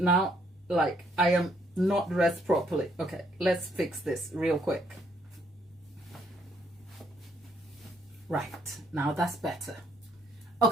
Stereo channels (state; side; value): normal; both; correlation 0.69